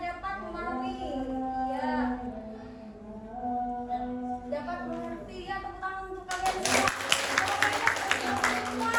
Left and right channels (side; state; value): both; identical; correlation 1.00